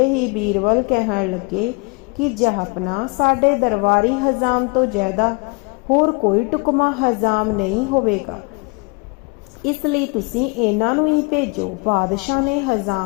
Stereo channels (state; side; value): quieter; right; 30.4 dB